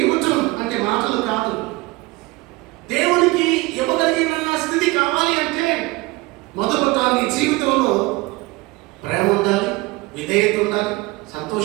ఇవ్వటం అంటే మాటలు కాదు. దేవునికి ఇవ్వగలిగిన స్థితి కావాలి అంటే మొదట నీ జీవితంలో ప్రేమ ఉండాలి, విధేయత ఉండాలి,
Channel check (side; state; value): left; quieter; 22.5 dB